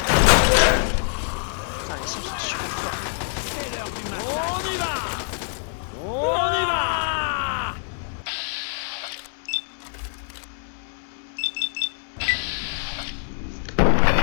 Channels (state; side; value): silent; right; 62 dB below the other